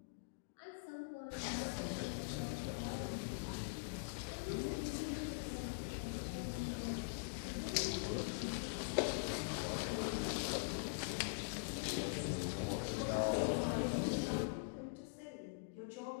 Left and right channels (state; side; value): quieter; right; 38.9 dB